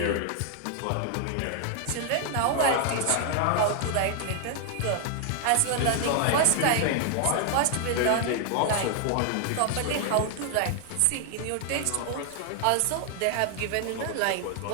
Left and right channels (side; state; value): both; different; correlation 0.00